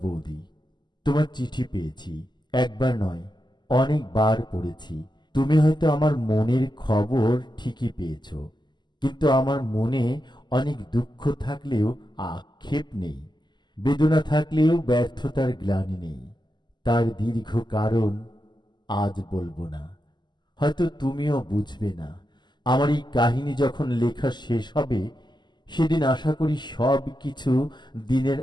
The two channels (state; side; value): late; right; 0.21 ms